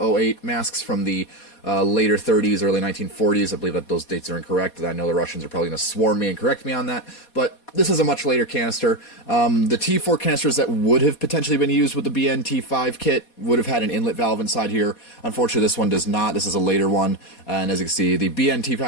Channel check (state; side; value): late; right; 4.2 ms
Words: masks from the later 30s, early 1940s. I believe that those dates are incorrect. I know the Russians are probably going to swarm me and correct me on that, but this is a much later canister. The T4 canisters that would have potentially been used with the BN-T5 kit would have had an inlet valve inside here. Unfortunately, this one does not. This is a later one, and as you can see, the